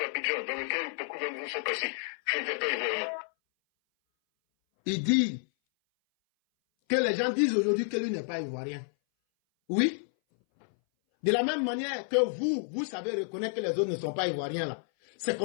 dans lequel beaucoup d'entre vous sont passés, je n'étais pas ivoirien. Il dit que les gens disent aujourd'hui que lui n'est pas ivoirien. Oui. De la même manière que vous savez reconnaître que les autres ne sont pas ivoiriens là. C'est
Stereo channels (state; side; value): silent; right; 58 dB below the other